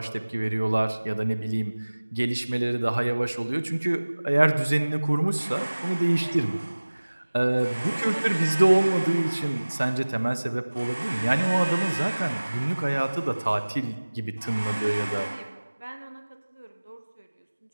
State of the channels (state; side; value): inverted; both; correlation -1.00